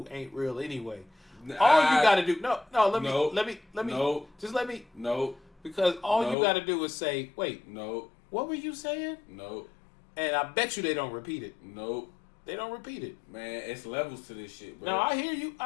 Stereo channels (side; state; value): right; drops out; at 6.4 s